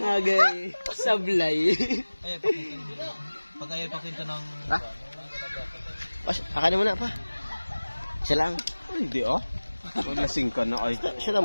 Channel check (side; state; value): both; inverted; correlation -1.00